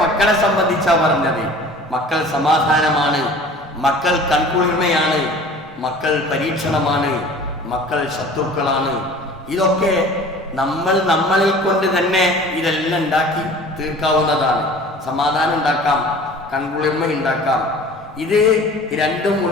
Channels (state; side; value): normal; both; correlation 0.44